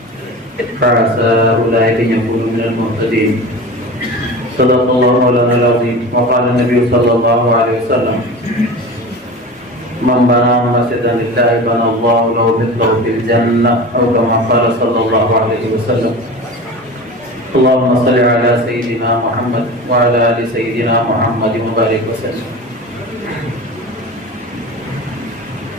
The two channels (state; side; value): normal; both; correlation 0.32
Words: فعسى أولئك أن يكونوا من المهتدين صدق الله مولانا العظيم وقال النبي صلى الله عليه وسلم من بنى مسجدا لله بنى الله له مثله في الجنة أو كما قال صلى الله عليه وسلم اللهم صل على سيدنا محمد وعلى آل سيدنا محمد وبارك وسلم.